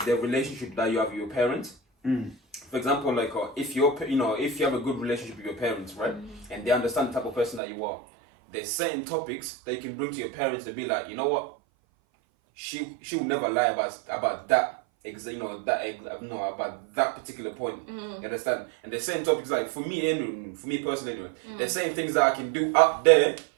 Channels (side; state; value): left; drops out; at 7.6 s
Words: the relationship that you have with your parents. For example, like if you have a good relationship with your parents, right, and they understand the type of person that you are, there's certain topics that you can bring to your parents to be like, you know what, she will never lie about that. About that particular point. You understand? And there's certain topics like for me personally anyway, there's certain things that I can do up there,